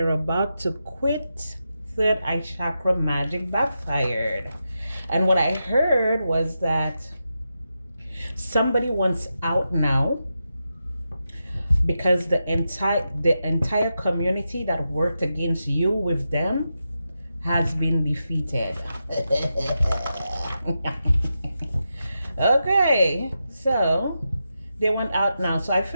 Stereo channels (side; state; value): both; inverted; correlation -0.88